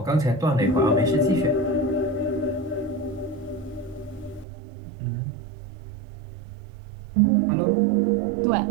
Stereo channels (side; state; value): left; drops out; at 4.5 s